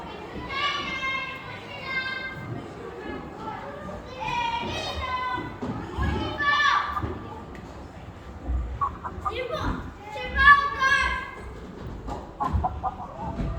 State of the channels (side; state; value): both; identical; correlation 1.00